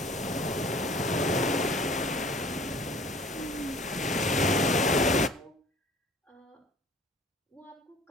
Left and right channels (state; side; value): normal; both; correlation 0.49